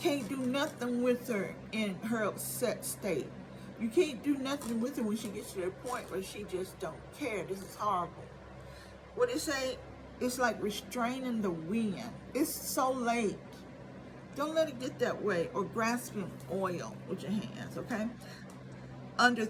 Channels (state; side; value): identical; both; correlation 1.00